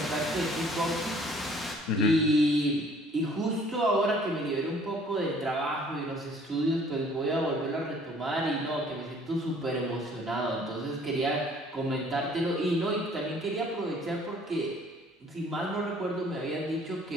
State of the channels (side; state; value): both; normal; correlation 0.56